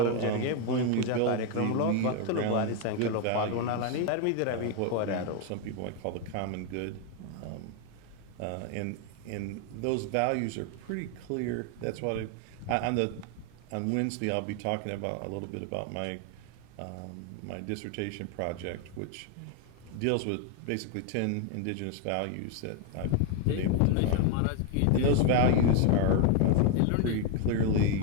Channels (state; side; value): different; both; correlation 0.01